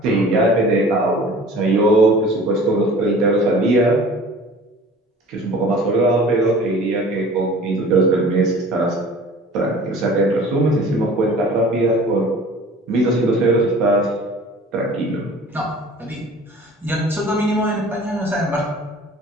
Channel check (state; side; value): normal; both; correlation 0.45